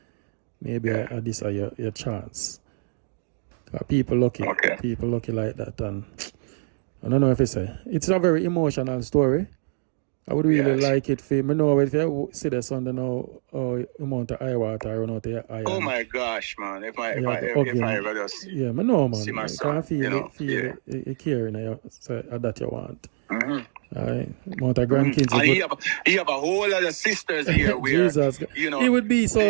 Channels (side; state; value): left; silent; digital silence